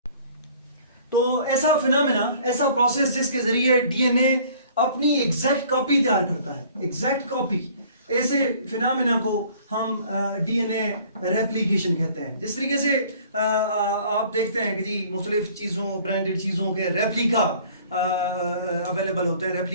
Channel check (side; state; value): both; inverted; correlation -0.53